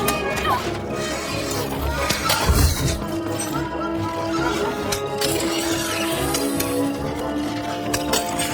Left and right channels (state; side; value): identical; both; correlation 1.00